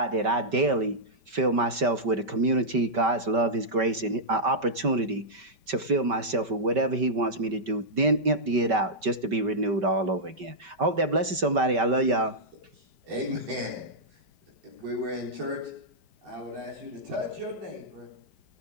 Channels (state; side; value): late; left; 5.2 ms